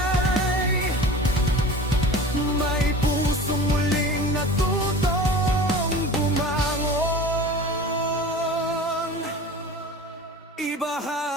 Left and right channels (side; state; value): both; normal; correlation 0.38